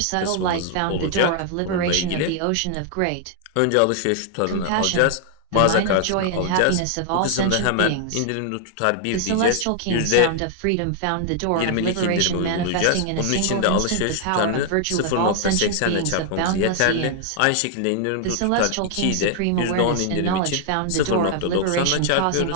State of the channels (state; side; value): different; both; correlation 0.00